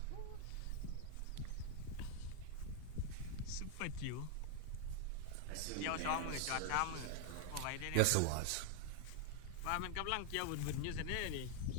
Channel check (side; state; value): both; different; correlation 0.00